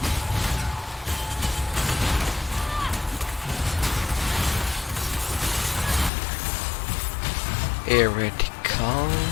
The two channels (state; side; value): drops out; right; at 6.1 s